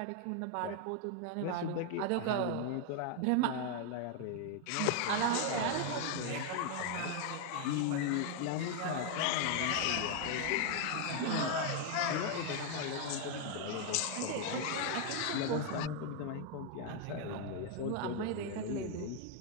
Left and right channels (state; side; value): different; both; correlation 0.00